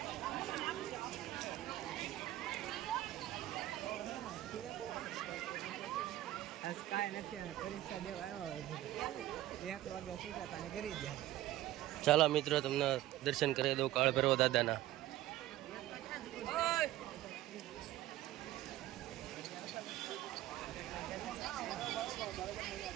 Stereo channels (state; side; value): quieter; left; 14.9 dB